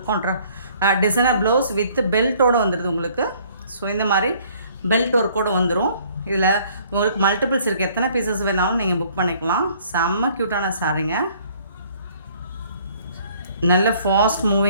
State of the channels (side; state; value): both; inverted; correlation -0.59